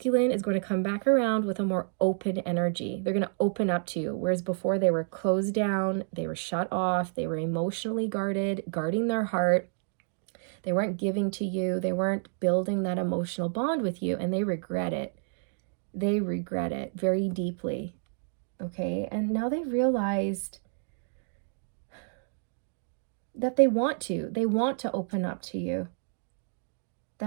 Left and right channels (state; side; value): silent; left; digital silence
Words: is going to come back around with a more open energy. They're going to open up to you, whereas before they were closed down, they were shut off, they were emotionally guarded, guarding their heart. They weren't giving to you, they weren't building that emotional bond with you, and they regret it. They regret it very deeply, okay? And now they've realized that they want to open up to you,